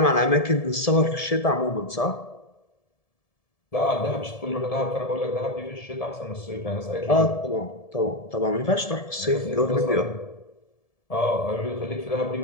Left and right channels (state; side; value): late; right; 1.7 ms